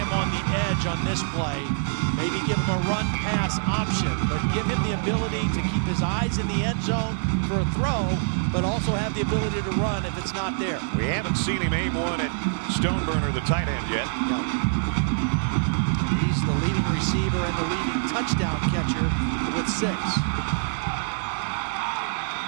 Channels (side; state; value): left; silent; digital silence